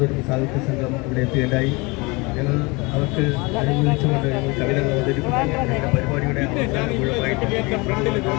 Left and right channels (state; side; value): quieter; right; 26.3 dB